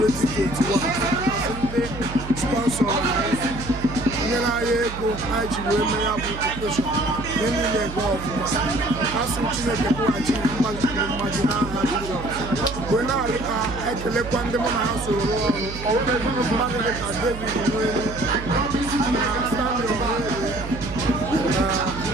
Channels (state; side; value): noise; right; hum, 10 dB below the sound